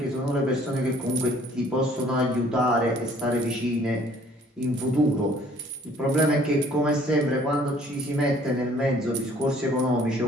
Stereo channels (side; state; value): both; normal; correlation 0.57